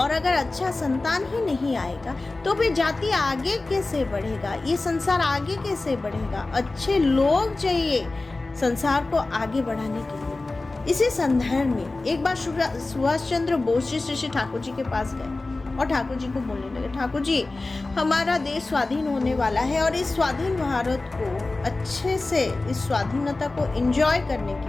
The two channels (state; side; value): quieter; right; 3.2 dB